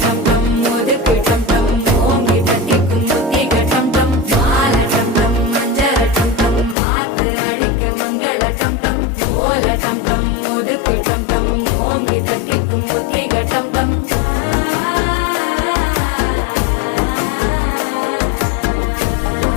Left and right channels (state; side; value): drops out; right; at 6.8 s